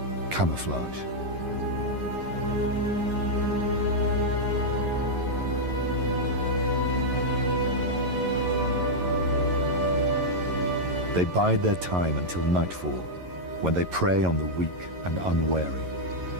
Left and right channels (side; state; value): left; late; 11 ms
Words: camouflage. They bide their time until nightfall, when they prey on the weak and unwary.